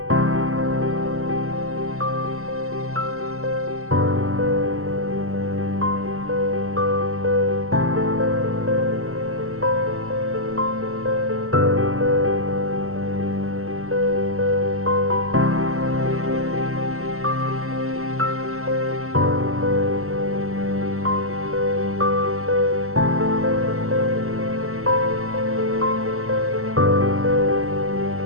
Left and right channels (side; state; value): left; late; 0.63 ms